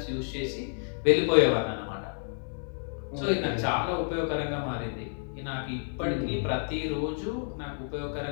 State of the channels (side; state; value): right; silent; digital silence